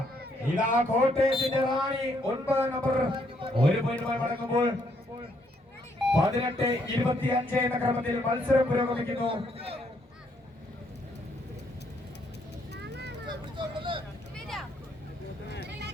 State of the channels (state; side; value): normal; both; correlation 0.71